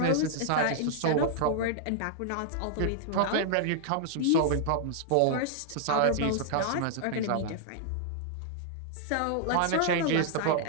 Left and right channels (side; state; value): both; different; correlation -0.01